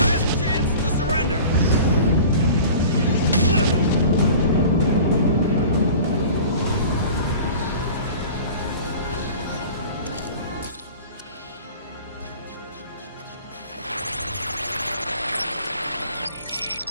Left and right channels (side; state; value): both; inverted; correlation -0.41